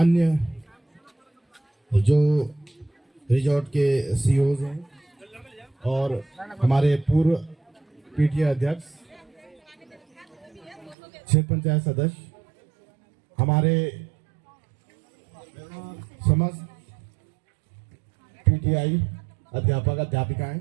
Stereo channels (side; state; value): left; drops out; at 11.0 s